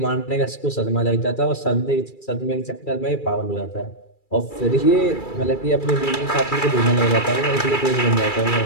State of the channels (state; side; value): late; right; 2.3 ms